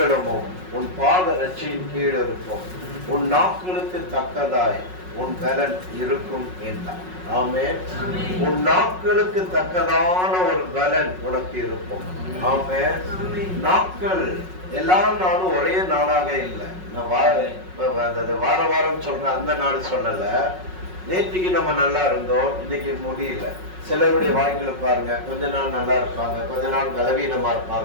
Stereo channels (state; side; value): late; left; 5.4 ms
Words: உன் பாதரட்சியின் கீழ் இருக்கும், உன் நாட்களுக்கு தக்கதாய் உன் பலன் இருக்கும் என்றான். ஆமென். உன் நாட்களுக்கு தக்கதான ஒரு பலன் உனக்கு இருக்கும். ஆமென். நாட்கள் எல்லா நாளும் ஒரே நாளாக இல்லை. நான் வார வாரம் சொல்றேன், அந்த நாள் சொல்லல. நேற்றுக்கு நம்ம நல்லா இருந்தோம், இன்னைக்கு முடியல. சிலருடைய வாழ்க்கையில பாருங்க, கொஞ்ச நாள் நல்லா இருப்பாங்க, கொஞ்ச நாள் பலவீனமா